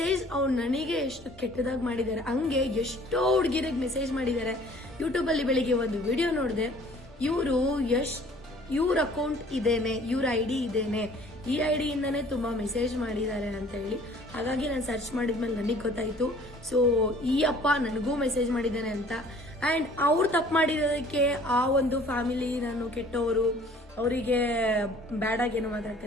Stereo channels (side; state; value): both; normal; correlation 0.53